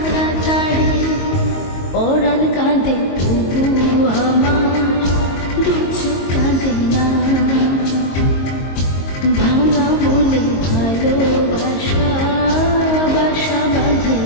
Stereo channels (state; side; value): late; right; 22 ms